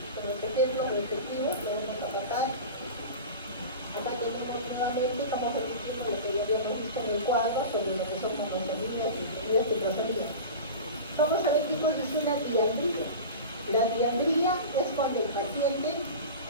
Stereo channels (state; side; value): inverted; both; correlation -0.31